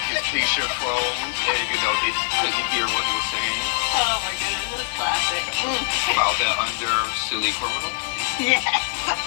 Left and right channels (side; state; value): right; silent; 63 dB below the other